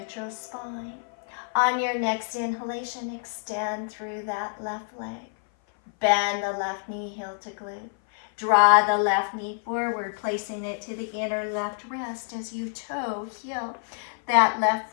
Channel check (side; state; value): right; silent; 56 dB below the other